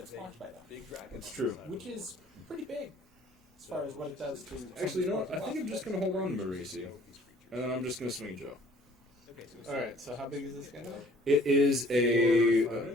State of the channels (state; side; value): normal; both; correlation 0.56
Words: it's blocked by that. Big dragon. It's on true. the side of Which him. is pretty big as far as what it does to. Actually, you know what? I think I'm just going to hold on to Marisi. So these creatures. And then I'm just going to swing Joe. Okay, so we Alright, so how big is this guy? It is a. 4 or